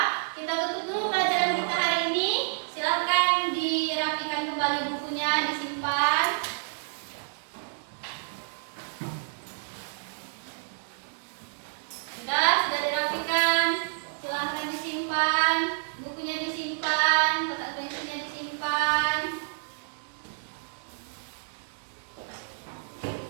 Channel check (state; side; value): silent; left; 59 dB below the other